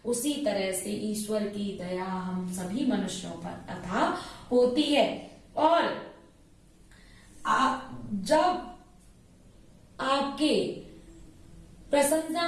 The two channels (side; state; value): both; identical; correlation 1.00